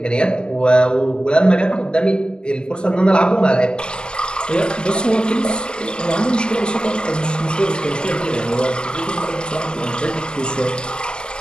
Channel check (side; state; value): right; late; 0.047 ms